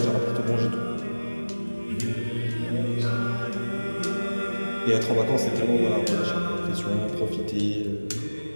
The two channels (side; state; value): both; inverted; correlation -1.00